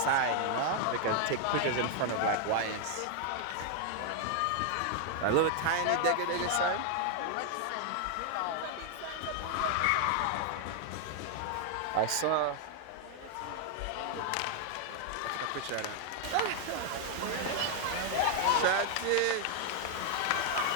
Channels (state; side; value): different; both; correlation 0.00